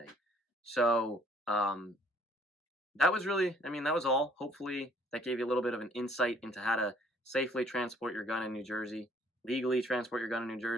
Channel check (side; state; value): both; normal; correlation 0.61